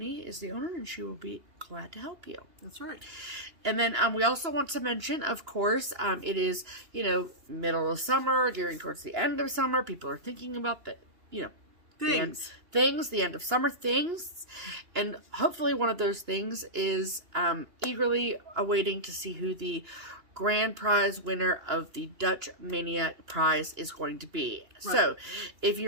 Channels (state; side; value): late; left; 2.9 ms